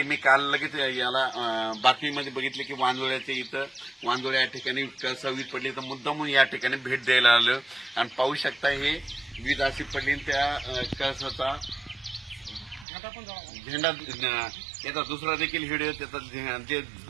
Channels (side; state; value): left; drops out; at 12.9 s